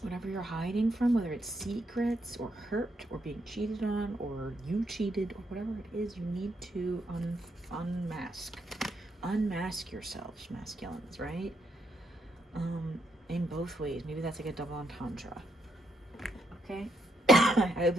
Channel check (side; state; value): both; normal; correlation 0.77